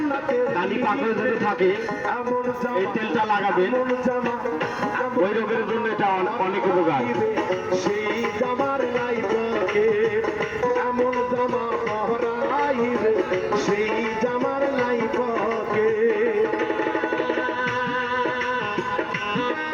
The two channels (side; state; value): both; identical; correlation 1.00